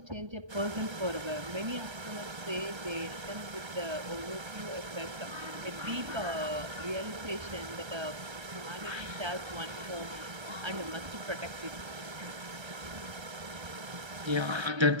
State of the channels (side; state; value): left; late; 1.3 ms